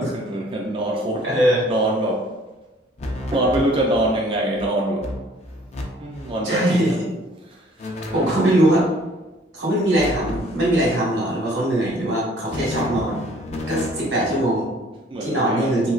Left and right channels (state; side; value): normal; both; correlation 0.56